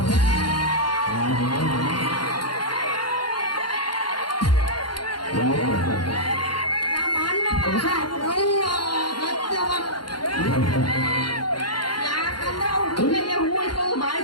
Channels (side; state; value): right; late; 0.71 ms